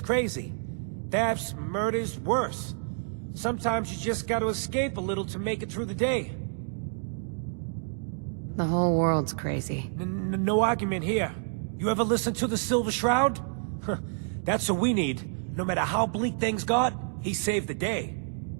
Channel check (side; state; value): left; silent; digital silence